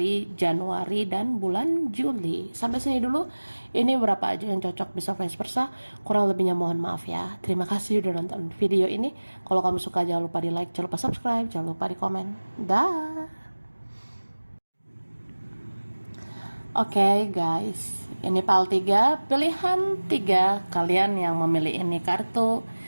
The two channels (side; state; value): both; inverted; correlation -1.00